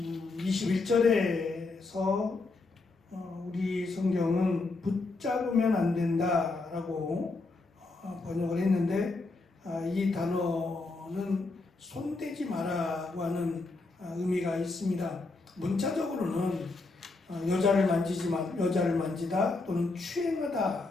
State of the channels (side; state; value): right; quieter; 3.5 dB